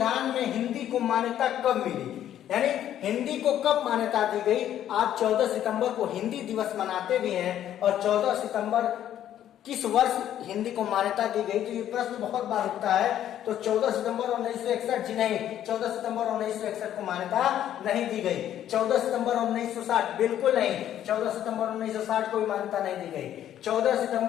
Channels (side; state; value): right; quieter; 11.2 dB